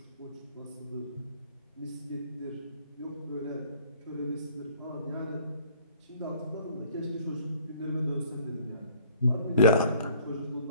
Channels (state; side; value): inverted; both; correlation -0.56